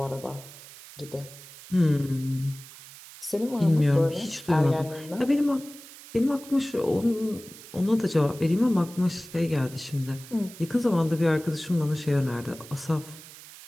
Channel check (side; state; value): right; noise; hiss, 17 dB below the sound